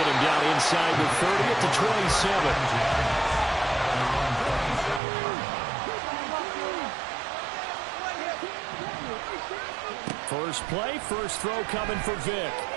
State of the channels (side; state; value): left; drops out; at 5.0 s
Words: him down inside the 30 at the 27. First play, first throw coming for Vic.